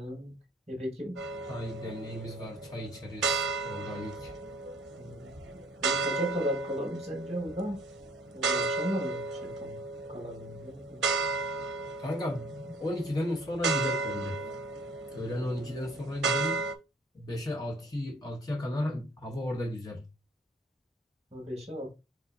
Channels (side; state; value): both; normal; correlation 0.56